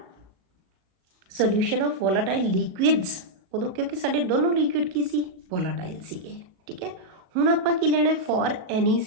solution of volatile liquids उदों क्योंकि साडे दोनों लिक्विड की सी वोलाटाइल सीगे, ठीक है। हुण आपां की लेना है फॉर एनी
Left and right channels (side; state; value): left; late; 37 ms